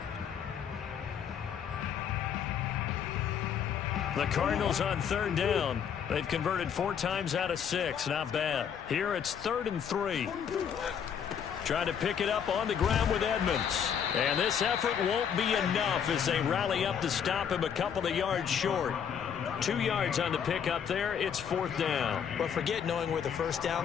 The Cardinals on 3rd down. They've converted 4 times out of 6. Not bad. Here it's 3rd and 3. Trying to pick it up on the ground with Edmonds. And this effort won't be enough as they rally up to stop him a couple of yards short. 2 yards on the pickup there. It's 4th down. But forget knowing where the 1st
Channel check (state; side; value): quieter; right; 7.9 dB